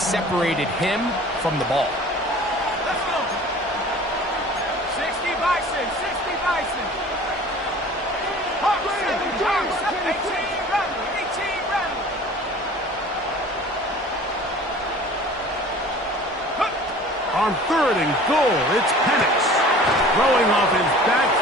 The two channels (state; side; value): normal; both; correlation 0.45